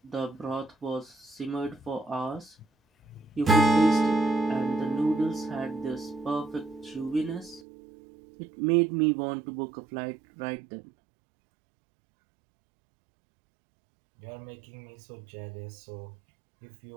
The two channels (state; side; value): drops out; left; at 7.6 s